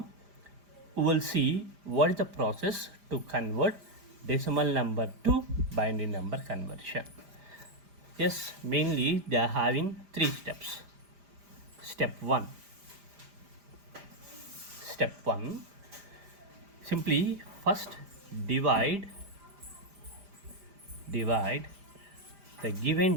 we will see what is the process to convert decimal number to binary number conversion. Yes, mainly they are having 3 steps. Step 1. Step 1. Simply first divide the given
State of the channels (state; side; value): late; left; 5.0 ms